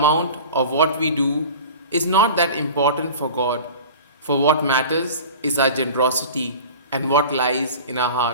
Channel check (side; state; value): both; inverted; correlation -0.38